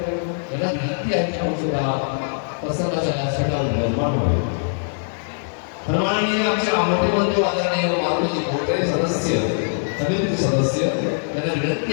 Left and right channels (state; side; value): silent; right; digital silence